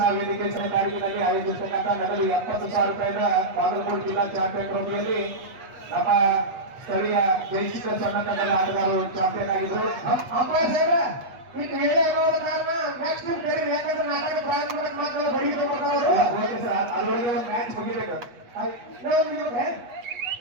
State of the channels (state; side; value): late; left; 8.3 ms